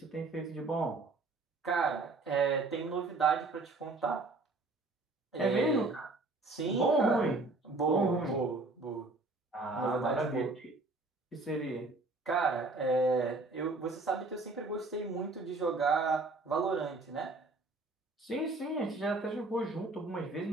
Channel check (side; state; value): left; quieter; 3.3 dB